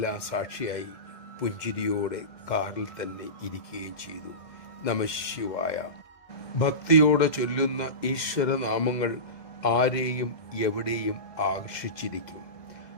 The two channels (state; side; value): late; right; 2.1 ms